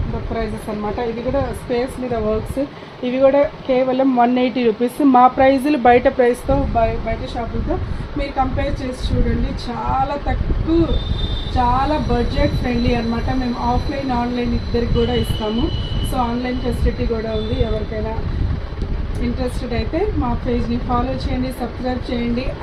ప్రైజెస్ అనమాట. ఇవి కూడా స్పేస్ మీద వర్క్స్, ఇవి కూడా కేవలం 180 రూపీస్. మా ప్రైజులు బయట ప్రైస్తో బయట షాపులతో మీరు కంపేర్ చేసి చూడండి. చాలా తక్కువ, చాలా బడ్జెట్ ఫ్రెండ్లీ అనమాట. మేము ఆఫ్లైన్ ఆన్లైన్ ఇద్దరికి కూడా ఇస్తాము. సో ఆన్లైన్ ఫెసిలిటీ కూడా ఉంది. ఎవరికైనా ఇంట్రెస్టెడ్ అయితే మా పేజ్ని ఫాలో చేయండి, సబ్స్క్రైబ్ చేయండి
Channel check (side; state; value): both; identical; correlation 1.00